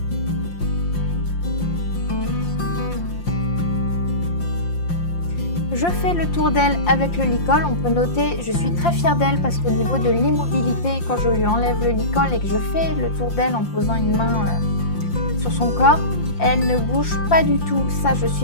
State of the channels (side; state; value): right; late; 5.7 ms